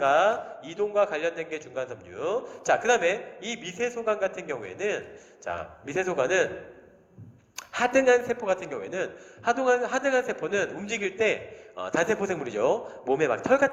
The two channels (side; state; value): both; identical; correlation 1.00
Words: 이동과 관련된 게 중간 섬유. 자, 그 다음에 이 미세소관 같은 경우에는 자, 미세소관은 하등한 세포 같은 경우에는 하등한 세포는 움직일 때 단세포 생물이죠. 몸에 막 털